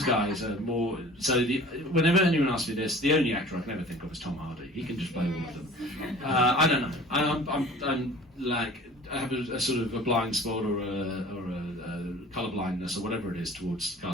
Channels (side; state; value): both; normal; correlation 0.45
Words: guys are more. So whenever anyone asks me this, the only actor I can ever think of is Tom Hardy. He can just play all of them. I don't know. I'm like, I have a sort of a blind spot or a colour blindness or whatever it is towards